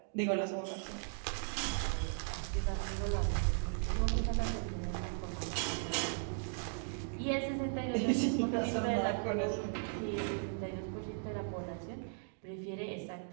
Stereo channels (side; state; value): left; silent; digital silence